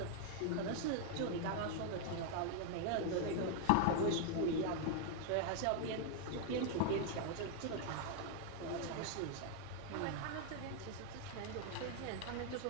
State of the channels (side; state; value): both; different; correlation 0.00